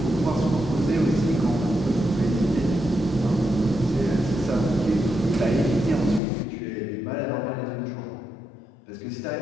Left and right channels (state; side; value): drops out; right; at 6.2 s